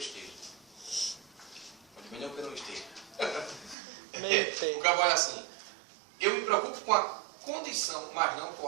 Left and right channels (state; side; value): drops out; left; at 3.8 s